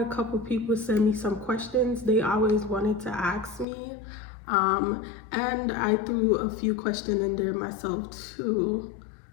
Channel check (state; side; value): drops out; right; at 3.7 s